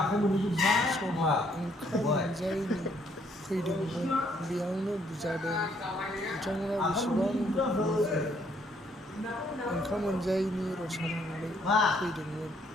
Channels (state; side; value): normal; both; correlation 0.68